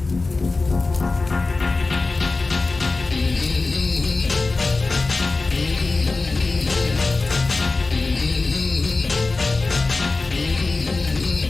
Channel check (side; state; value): right; quieter; 3.6 dB